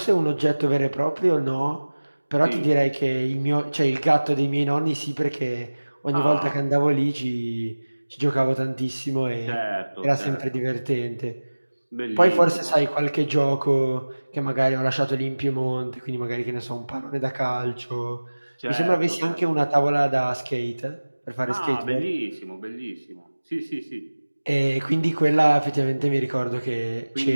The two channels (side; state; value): both; inverted; correlation -1.00